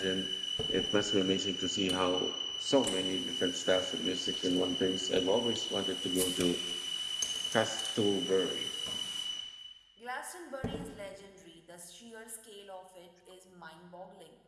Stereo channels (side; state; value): both; identical; correlation 1.00